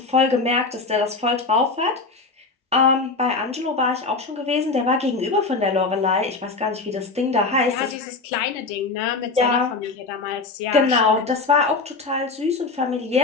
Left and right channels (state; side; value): quieter; right; 3.9 dB